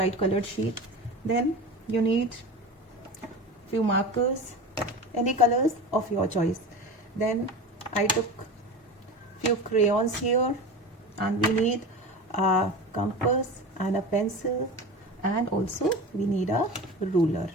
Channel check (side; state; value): both; normal; correlation 0.30